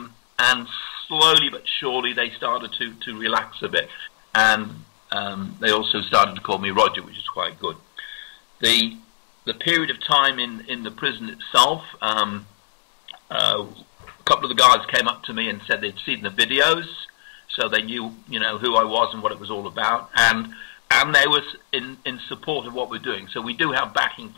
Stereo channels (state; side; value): silent; right; digital silence